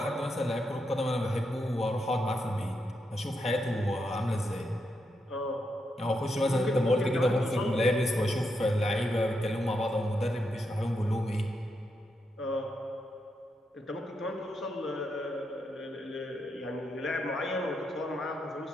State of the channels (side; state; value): both; normal; correlation 0.83